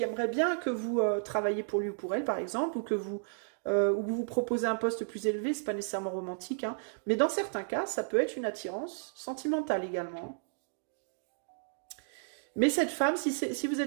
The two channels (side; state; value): left; silent; digital silence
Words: aimerait bien que vous travailliez pour lui ou pour elle, par exemple, ou vous proposez un poste plus élevé, c'est pas nécessairement romantique, hein, mais dans certains cas, ça peut être une attirance sentimentale également. Mais cette femme, si vous